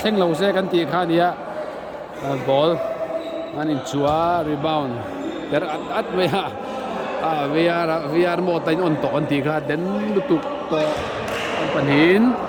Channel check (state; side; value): identical; both; correlation 1.00